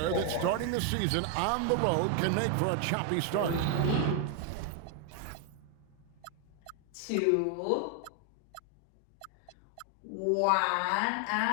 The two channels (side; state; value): both; different; correlation 0.01